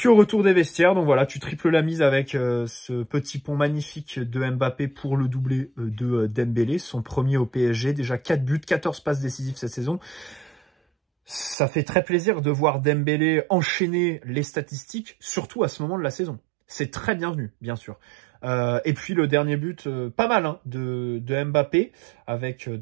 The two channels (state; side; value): drops out; left; at 11.6 s